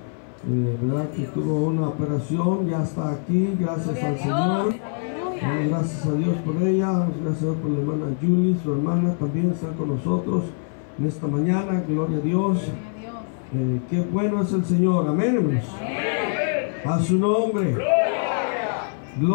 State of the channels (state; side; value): silent; right; 63 dB below the other